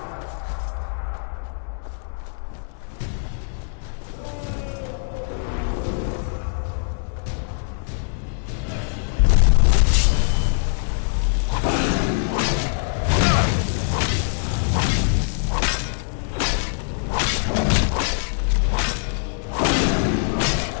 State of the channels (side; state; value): right; silent; 64 dB below the other